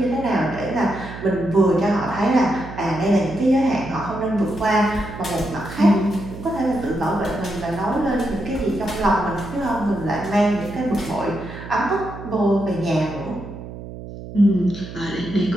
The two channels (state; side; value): noise; right; hum, 12 dB below the sound